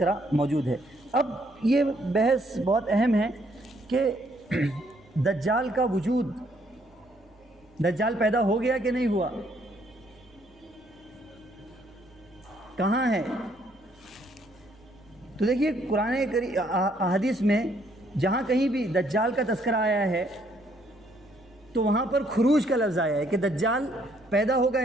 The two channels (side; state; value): both; normal; correlation 0.68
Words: موجود ہے. اب یہ بحث بہت اہم ہے کہ دجال کا وجود، دجال پیدا ہو گیا کہ نہیں ہوا، کہاں ہے؟ تو دیکھیے قرآن حدیث میں جہاں کہیں بھی دجال کا تذکرہ آیا ہے تو وہاں پر خروج کا لفظ آیا ہے کہ دجال پیدا ہوگا،